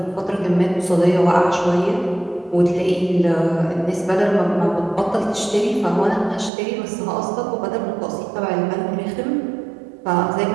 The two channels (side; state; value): left; drops out; at 6.5 s